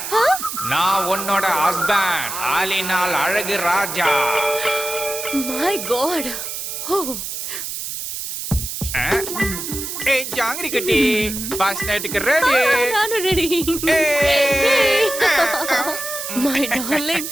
நான் உன்னோட ஹஸ்பண்ட், ஆலினால் அழகு ராஜா. My God. ஓ ஏய் ஜாங்கிரி கட்டி, ஃபர்ஸ்ட் நைட்டுக்கு ரெடி. நானும் ready. My darling,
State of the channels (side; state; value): right; noise; hiss, 6 dB below the sound